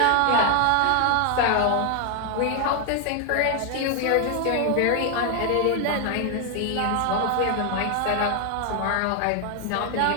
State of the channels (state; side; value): different; both; correlation 0.01